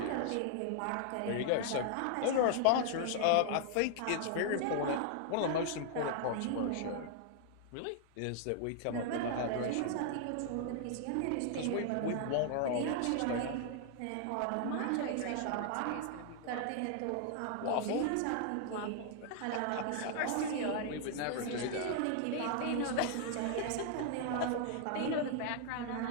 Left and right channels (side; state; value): both; different; correlation -0.01